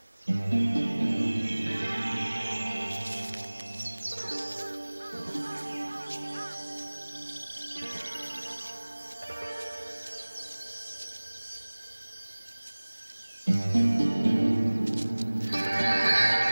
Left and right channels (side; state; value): both; inverted; correlation -1.00